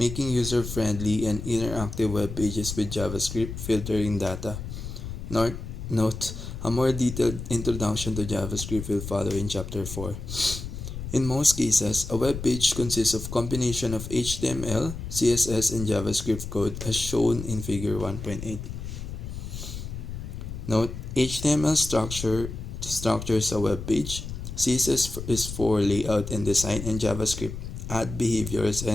user-friendly and interactive web pages with JavaScript, filtering data. Note, a more detailed introduction to JavaScript will follow in Chapter 4. In most cases, a web page consists of a combination of HTML, CSS, and JavaScript code as shown in Figure 1.8. Note, HTML structures a web page, CSS is for layout and design, and JavaScript add behaviors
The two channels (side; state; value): left; noise; rumble, 8 dB below the sound